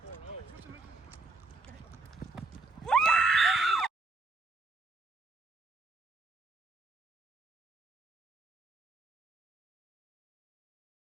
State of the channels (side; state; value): left; quieter; 3.4 dB